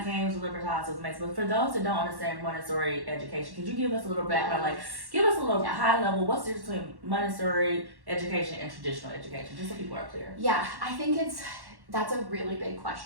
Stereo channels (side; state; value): left; late; 1.1 ms